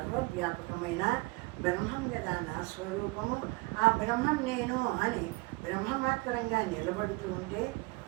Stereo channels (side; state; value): left; quieter; 24.5 dB